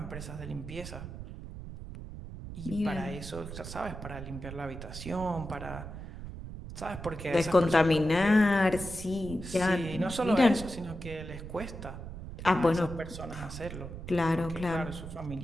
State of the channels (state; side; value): noise; right; rumble, 10 dB below the sound